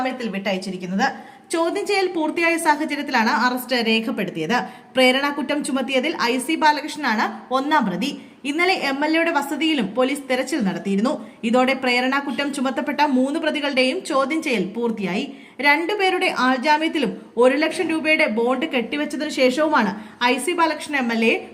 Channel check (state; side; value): identical; both; correlation 1.00